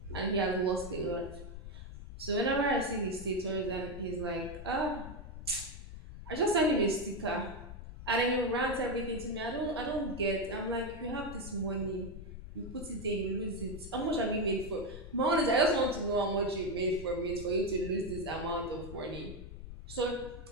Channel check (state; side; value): noise; left; rumble, 11 dB below the sound